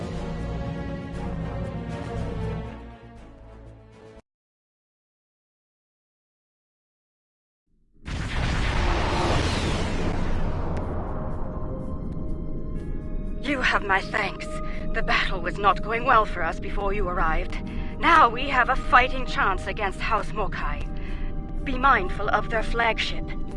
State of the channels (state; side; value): identical; both; correlation 1.00